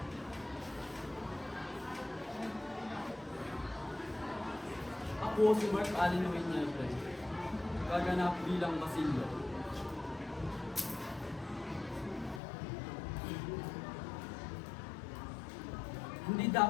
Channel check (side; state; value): right; drops out; at 12.4 s